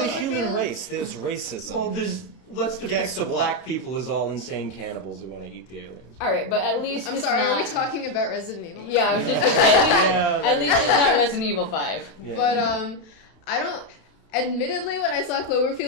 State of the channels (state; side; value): late; right; 32 ms